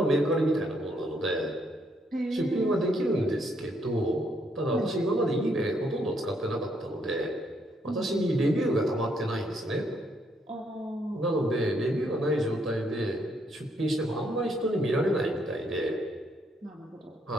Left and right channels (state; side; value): normal; both; correlation 0.73